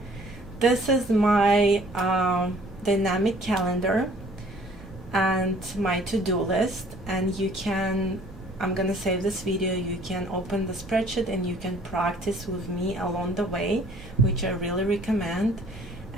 this is my dynamic calendar and my to-do list, and you can, I'm gonna save this video, you can open the spreadsheet and you can practice with me along the way, which I really recommend.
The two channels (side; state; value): both; normal; correlation 0.56